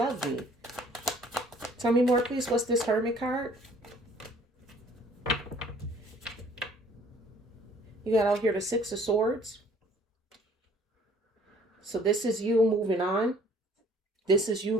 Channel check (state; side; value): normal; both; correlation 0.56